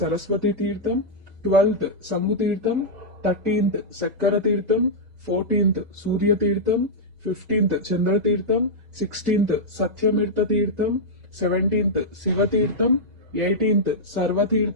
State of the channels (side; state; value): left; late; 2.0 ms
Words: తీర్థం, 12th సంగు తీర్థం, 13th చక్కర తీర్థం, 14th సూర్య తీర్థం, 15th చంద్ర తీర్థం, 16th సత్యమీర్థ తీర్థం, 17th శివ తీర్థం, 18th